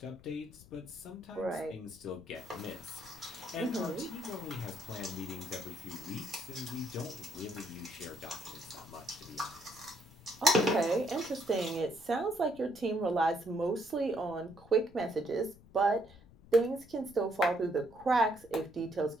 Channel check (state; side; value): noise; left; rumble, 22 dB below the sound